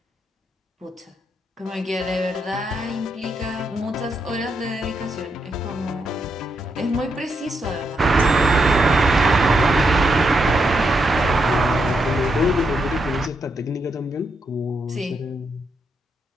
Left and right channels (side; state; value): both; normal; correlation 0.81